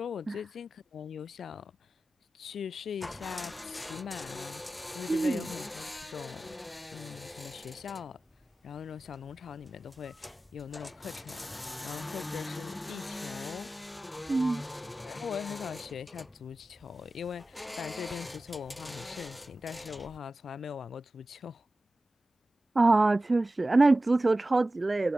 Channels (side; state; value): both; normal; correlation 0.95